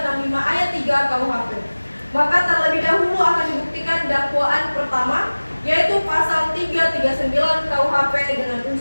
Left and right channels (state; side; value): inverted; both; correlation -1.00